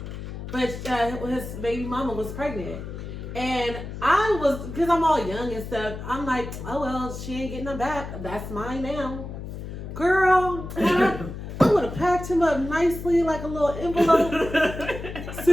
But his baby mama was pregnant. And I was, because I'm all young and stuff, I'm like, oh well, she ain't getting them back. That's mine now. Girl, I would have packed him up nicely like a little envelope,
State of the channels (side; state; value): left; noise; hum, 9 dB below the sound